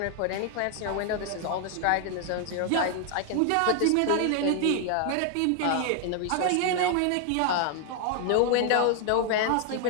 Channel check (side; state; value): both; different; correlation 0.00